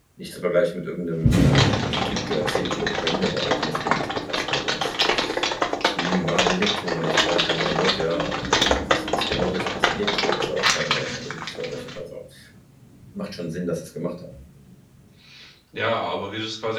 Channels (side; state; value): both; identical; correlation 1.00